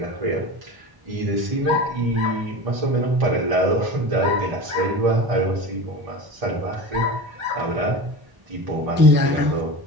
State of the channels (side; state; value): left; late; 1.0 ms